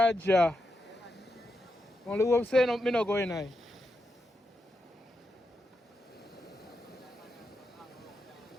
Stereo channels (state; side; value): normal; both; correlation 0.86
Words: yeah. Only hope say no, me no go in there.